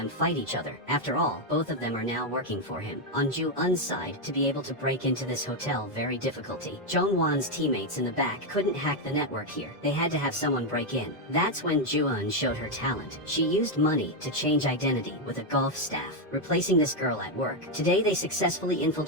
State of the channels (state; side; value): normal; both; correlation 0.03